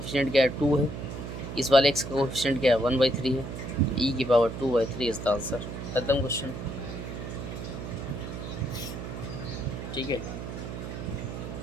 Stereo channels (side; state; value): right; noise; hum, 7 dB below the sound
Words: क्या है 2 है, इस वाले x का कोफिशिएंट क्या है 1/3 है, e की पावर 2/3 इज द आंसर। खत्म क्वेश्चन। ठीक है।